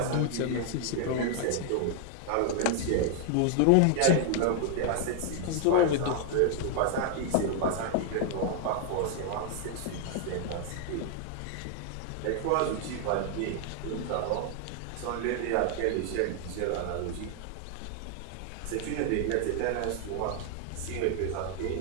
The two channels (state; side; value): different; both; correlation 0.00